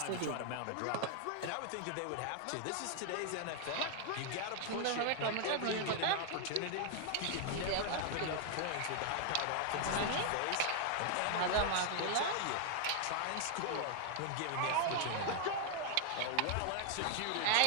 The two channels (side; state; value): both; different; correlation 0.00